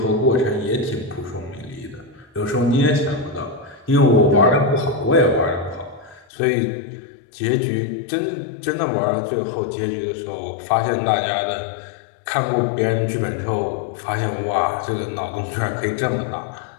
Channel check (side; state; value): right; drops out; at 6.2 s